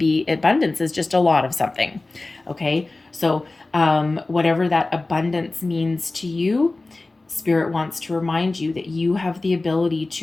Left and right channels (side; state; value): right; quieter; 3.2 dB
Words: is just a lot of something. Okay, so whatever that abundance means to you, Spirit wants to remind you that you have the ability